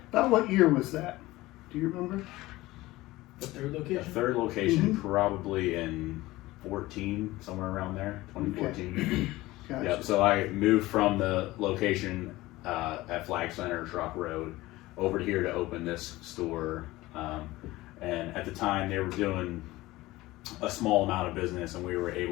About what year was that? Do you remember? The third location? The third location probably in 14, somewhere around there, 2014. Gotcha. Yep. So I moved from the location at Flag Center, Truck Road, over here to open this store. And at the time, they were doing a small amount of business, and we were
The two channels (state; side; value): quieter; right; 18.6 dB